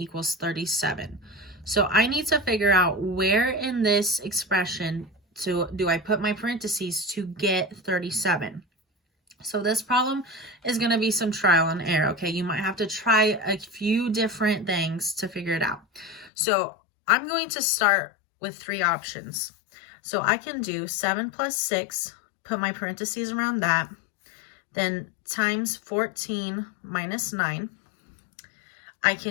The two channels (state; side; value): drops out; right; at 16.3 s